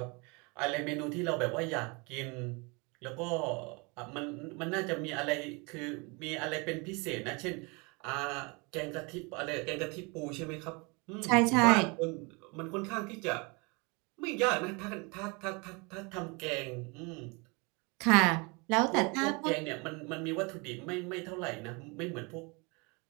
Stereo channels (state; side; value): quieter; left; 29.2 dB